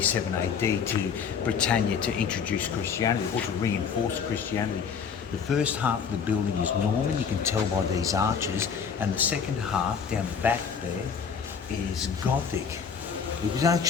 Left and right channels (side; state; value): right; quieter; 6.6 dB